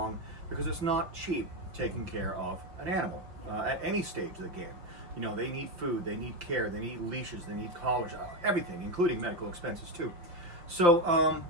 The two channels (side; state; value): left; late; 5.9 ms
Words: because it's not cheap taking care of an animal at any stage of the game. You know, they need food, they need care, they need leashes, they need collars, everything, including medical expenses too. So